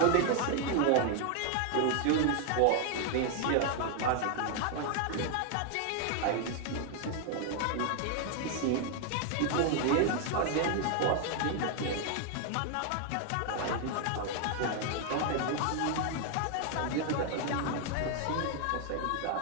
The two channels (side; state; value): both; different; correlation 0.00